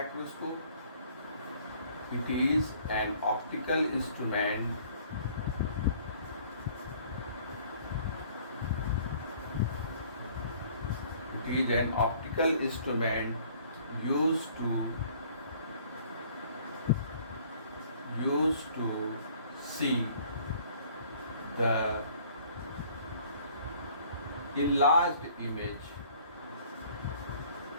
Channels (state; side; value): inverted; both; correlation -0.56